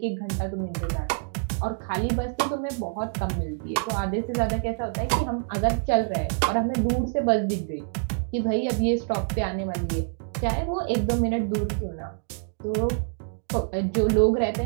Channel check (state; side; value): silent; left; digital silence